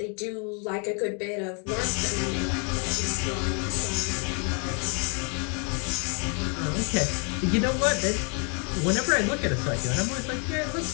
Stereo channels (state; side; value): quieter; right; 36.7 dB